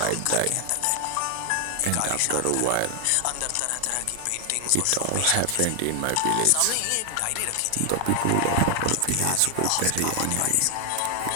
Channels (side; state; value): both; different; correlation 0.00